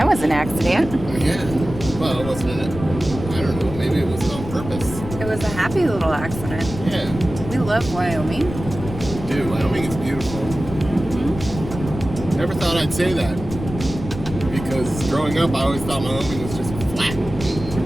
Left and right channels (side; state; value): left; noise; rumble, 10 dB below the sound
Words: was an accident. Yeah, well, it wasn't in it. I don't know, maybe it was on purpose. It was a happy little accident. Yeah. We love Wyoming. Dude, Wyoming is beautiful. Never thought I'd say that. Because growing up, I always thought Wyoming was just flat,